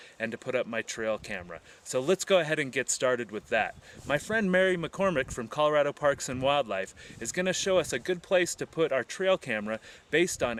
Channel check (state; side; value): identical; both; correlation 1.00